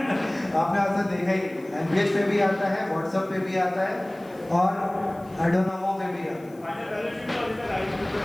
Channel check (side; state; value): left; noise; hiss, 28 dB below the sound